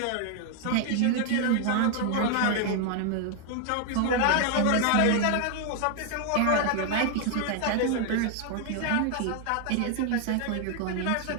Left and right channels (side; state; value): both; different; correlation 0.00